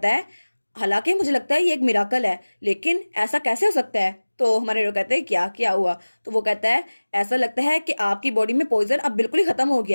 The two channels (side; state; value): both; inverted; correlation -1.00